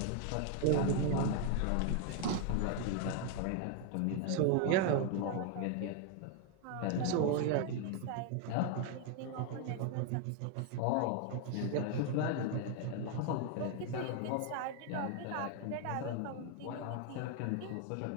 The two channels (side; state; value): both; different; correlation 0.00